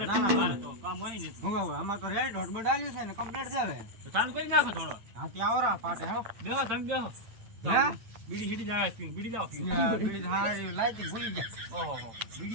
ના, ના, મારે તો કામ હોય ને હું હવે આમાં તો રેડ હોટ બડાલ્યું છે ને કમ્પ્લીટ છે હવે તો ચાલુ કરી નાખો થોડો હાથી આવરા પાટે હેલો બેહો તમે બેહો હે? બીડી સીડી જાય બીડી જાવ બીડી હારી લાઈટ ભૂલી ગયા ઓહો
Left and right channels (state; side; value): late; left; 9.0 ms